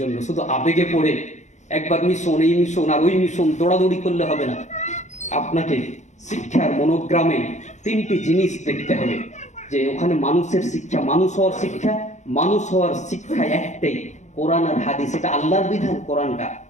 শুধু আবেগে পড়ে একবার মিশন, এই মিশন আর ওই মিশন দৌড়াদৌড়ি করলে হবে না। আপনাকে শিক্ষার মনোগ্রামে তিনটি জিনিস দেখতে হবে, যে ওখানে মানুষের শিক্ষা, মানুষ হওয়ার শিক্ষা। মানুষ হওয়ার শিক্ষা একটাই, কোরআন আর হাদিস। এটা আল্লাহর বিধান।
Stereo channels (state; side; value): late; right; 0.34 ms